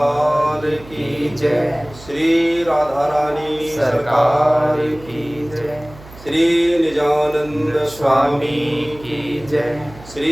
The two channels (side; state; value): right; noise; hum, 20 dB below the sound